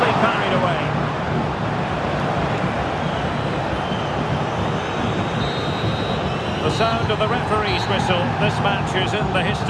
parried away. The sound of the referee's whistle. This match is in the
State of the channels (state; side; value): identical; both; correlation 1.00